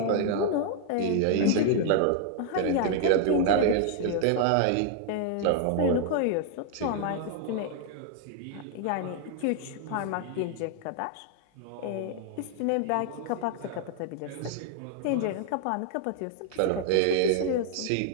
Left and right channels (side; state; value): both; different; correlation 0.00